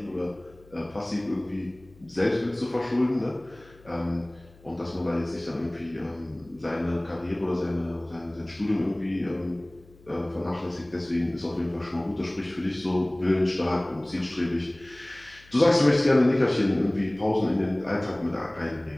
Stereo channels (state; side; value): noise; left; hum, 25 dB below the sound